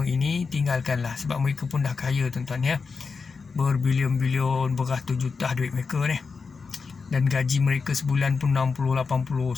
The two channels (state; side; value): quieter; right; 4.9 dB